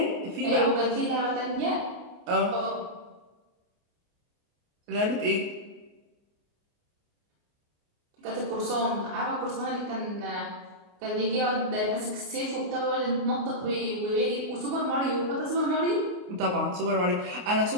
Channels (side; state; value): left; late; 28 ms